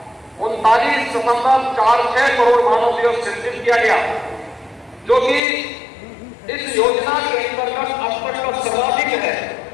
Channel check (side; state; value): right; drops out; at 5.4 s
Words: 39.46 करोड़ मानव दिवस सृजित किया गया, जो कि इस योजना के अंतर्गत अब तक का सर्वाधिक है।